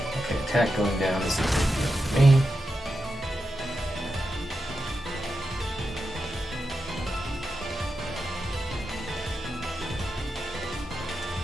Okay, attack going down is for me.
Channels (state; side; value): normal; both; correlation 0.88